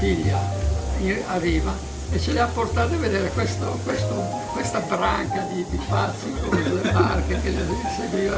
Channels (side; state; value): both; identical; correlation 1.00